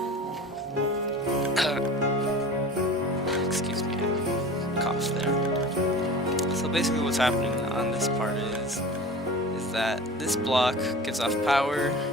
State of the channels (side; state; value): both; normal; correlation 0.37